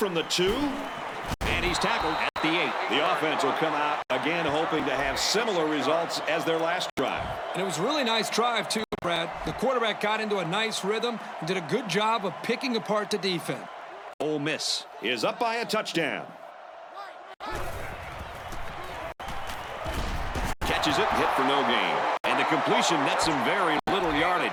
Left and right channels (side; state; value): both; identical; correlation 1.00